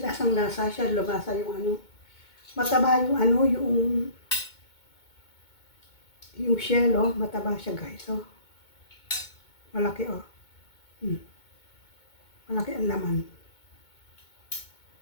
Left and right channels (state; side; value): late; right; 2.2 ms